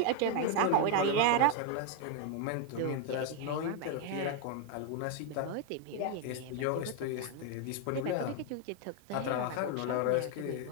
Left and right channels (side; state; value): both; different; correlation 0.01